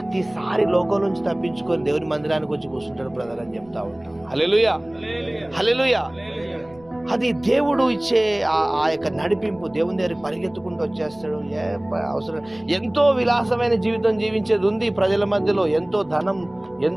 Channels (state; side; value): noise; left; rumble, 27 dB below the sound